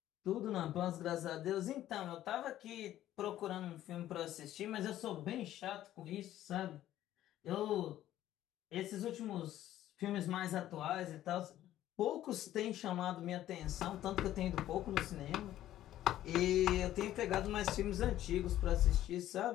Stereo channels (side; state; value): right; quieter; 13.1 dB